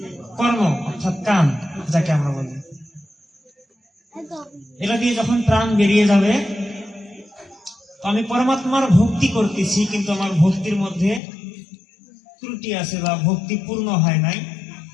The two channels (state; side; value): drops out; right; at 11.2 s